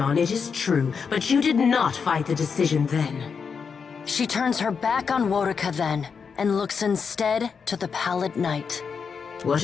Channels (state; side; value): quieter; right; 6.0 dB